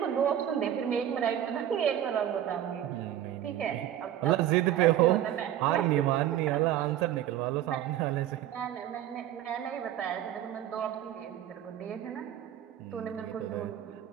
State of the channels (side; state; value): left; quieter; 11.5 dB